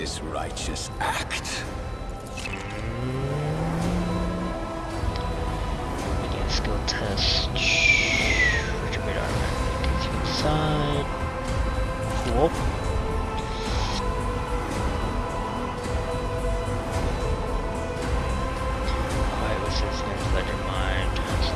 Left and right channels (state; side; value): identical; both; correlation 1.00